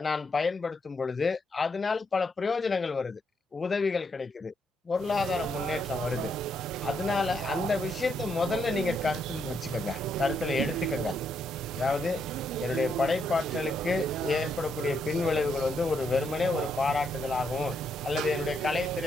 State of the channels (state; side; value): normal; both; correlation 0.77